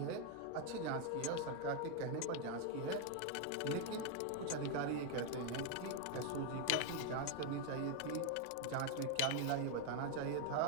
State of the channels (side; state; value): both; different; correlation 0.01